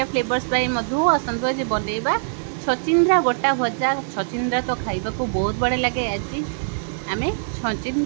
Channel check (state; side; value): silent; left; digital silence